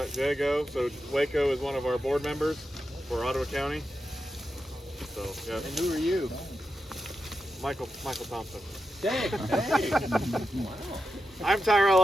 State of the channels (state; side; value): normal; both; correlation 0.88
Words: Jay go. So Waco is one of our board members for Ottawa County. So yeah. And who are you? Michael Thompson. Hey. Wow. I'm Tyrell